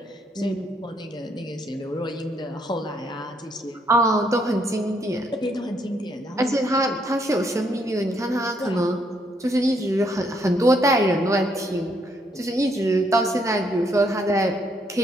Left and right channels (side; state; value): both; normal; correlation 0.72